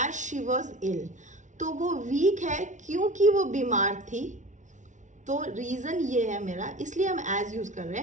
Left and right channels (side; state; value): left; late; 0.36 ms